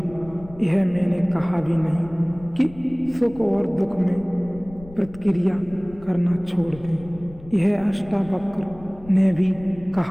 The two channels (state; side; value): noise; left; rumble, 19 dB below the sound